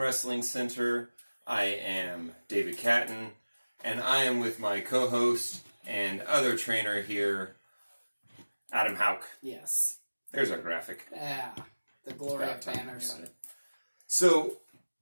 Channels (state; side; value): inverted; both; correlation -1.00